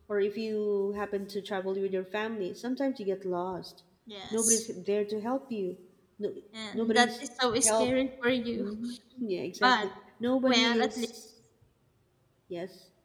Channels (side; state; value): both; identical; correlation 1.00